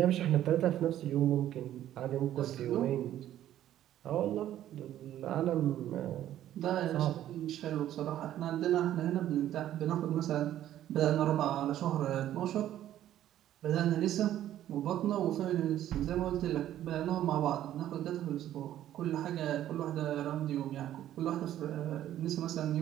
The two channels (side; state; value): left; quieter; 12.2 dB